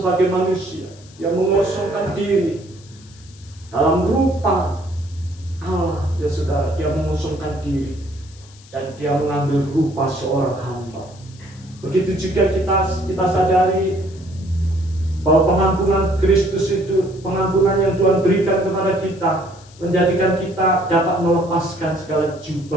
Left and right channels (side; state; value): left; noise; hiss, 24 dB below the sound